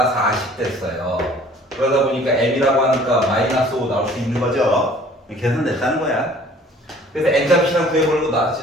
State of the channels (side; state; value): both; normal; correlation 0.52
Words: 40 됐어요. 그러다 보니까 m이라고 하니까 마이너스 5 나올 수 있는 거죠. 계산됐다는 거야. 그래서 n값이랑 구해보려고